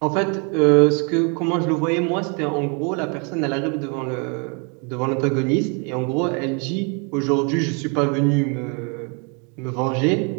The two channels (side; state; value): left; quieter; 35.1 dB